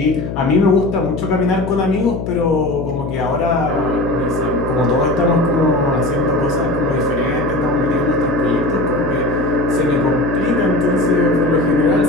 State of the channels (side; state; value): left; noise; hum, 6 dB below the sound